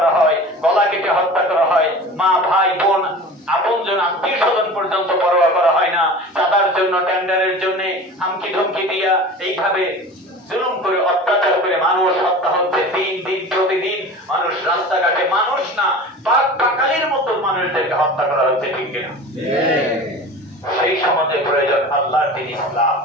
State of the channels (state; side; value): normal; both; correlation 0.37